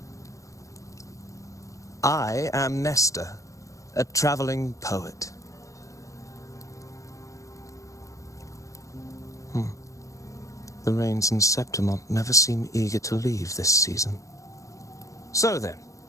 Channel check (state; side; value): late; right; 0.16 ms